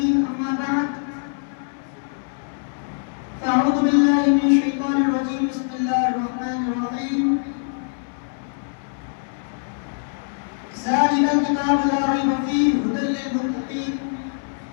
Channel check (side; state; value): right; silent; 63 dB below the other